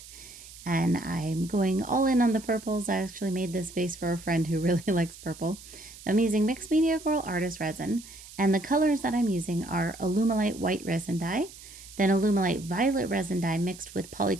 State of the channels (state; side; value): noise; right; hiss, 17 dB below the sound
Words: and I'm going all in on the purples. I actually made this vase for a friend who really likes purple. So I'm using Mixed Media Girl Artist Resin, and the colors that I'm using are Alumilite White Resin Dye, then Alumilite Violet Resin Dye mixed with